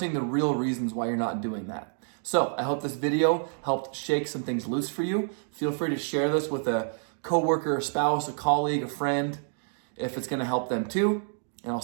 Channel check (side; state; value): left; silent; digital silence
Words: the real reasons why you're not doing that. So I hope this video helped shake some things loose for you. Feel free to share this with a coworker, a spouse, a colleague, a friend, if it's gonna help them too. And I'll